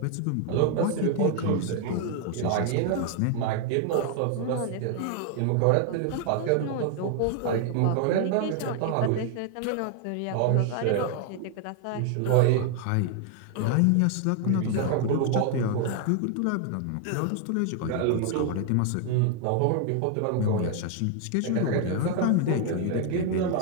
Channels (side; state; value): both; different; correlation 0.00